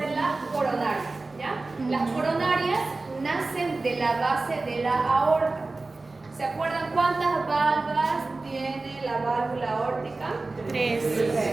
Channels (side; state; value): left; quieter; 3.4 dB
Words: las coronarias. ¿Ya? Las coronarias nacen de la base de la aorta. ¿Se acuerdan cuántas válvulas tiene la válvula aórtica? 3.